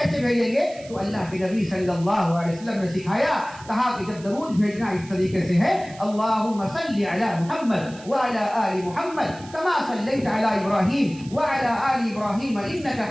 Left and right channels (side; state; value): right; noise; hiss, 20 dB below the sound